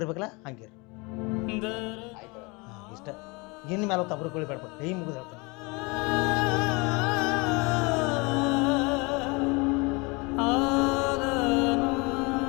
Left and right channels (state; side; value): quieter; right; 27.7 dB